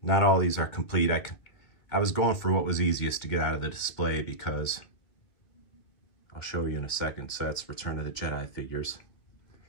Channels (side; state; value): right; late; 2.5 ms